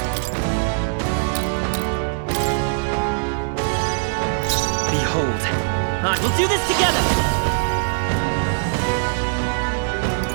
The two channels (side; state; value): left; silent; 60 dB below the other